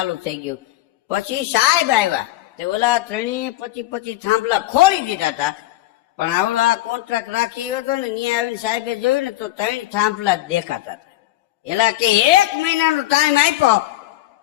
થઈ ગયું. પછી સાહેબ આવ્યા તે ઓલા 25 થાંભલા ખોલી દીધા હતા, પણ આવડા કોન્ટ્રાક્ટ રાખી હતો ને ત્યાં આવીને સાહેબે જોયું ને તો 3 થાંભલા જ દેખાતા હતા. એલા કે 1 મહિનાનો ટાઈમ આપ્યો,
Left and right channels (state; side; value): quieter; right; 16.1 dB